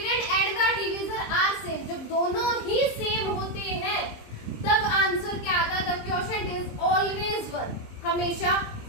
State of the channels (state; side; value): late; right; 23 ms